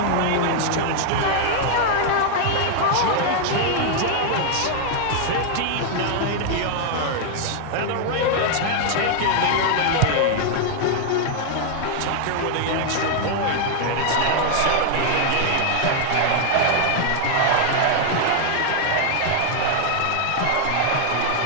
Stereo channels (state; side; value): different; both; correlation 0.00